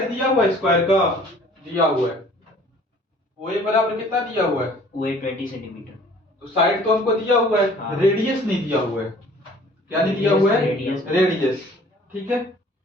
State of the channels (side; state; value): both; normal; correlation 0.52